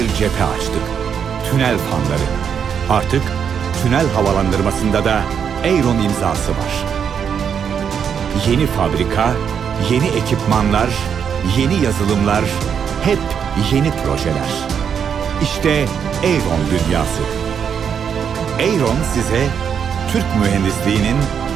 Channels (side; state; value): left; quieter; 7.5 dB